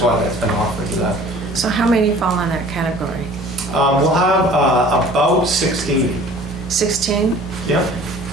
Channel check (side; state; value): both; normal; correlation 0.47